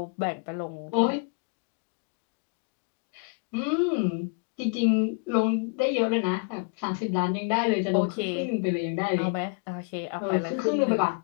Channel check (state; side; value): quieter; right; 37.2 dB